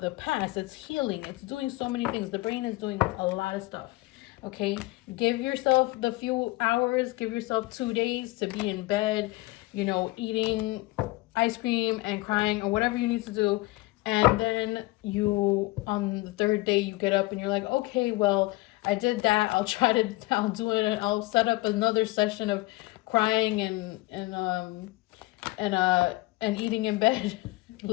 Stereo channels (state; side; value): quieter; right; 21.2 dB